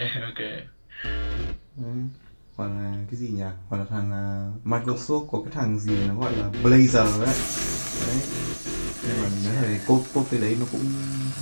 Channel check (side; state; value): both; inverted; correlation -1.00